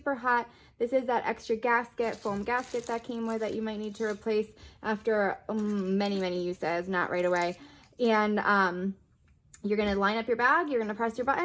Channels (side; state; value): both; identical; correlation 1.00